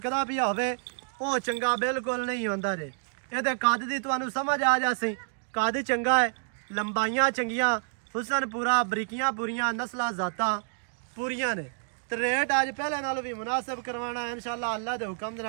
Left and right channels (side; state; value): left; silent; digital silence